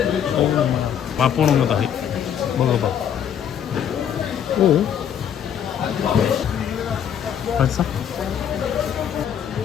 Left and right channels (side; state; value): right; quieter; 8.9 dB